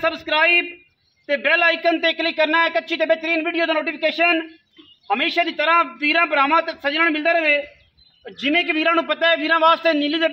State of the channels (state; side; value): identical; both; correlation 1.00